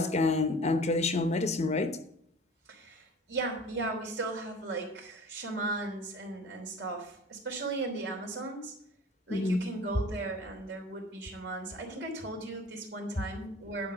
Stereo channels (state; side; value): normal; both; correlation 0.42